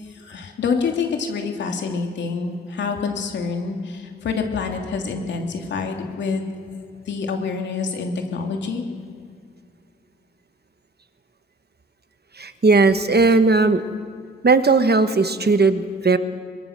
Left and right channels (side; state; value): both; normal; correlation 0.46